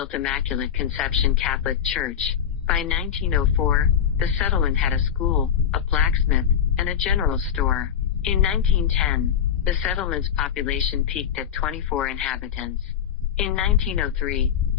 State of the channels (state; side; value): quieter; right; 8.4 dB